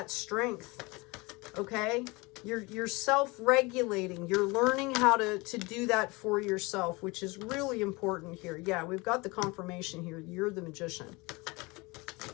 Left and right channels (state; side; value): quieter; right; 25.0 dB